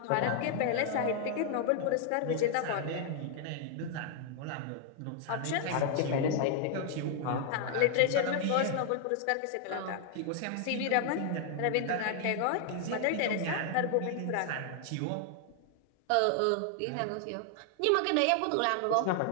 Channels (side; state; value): both; different; correlation 0.00